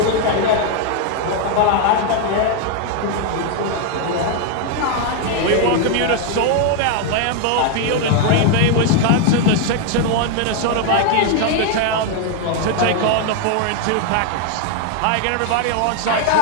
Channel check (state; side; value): different; both; correlation 0.01